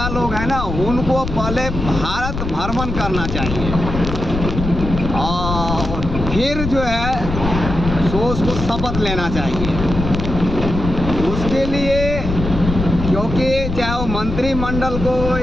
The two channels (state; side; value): noise; left; rumble, 5 dB below the sound